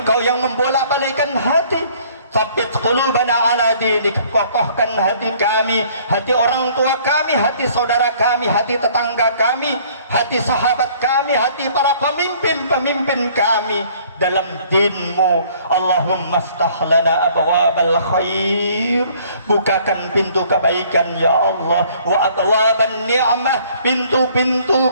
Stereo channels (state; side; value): inverted; both; correlation -0.58